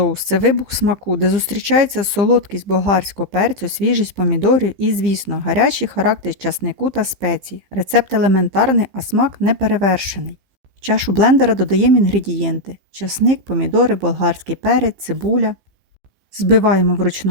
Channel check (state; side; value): late; left; 15 ms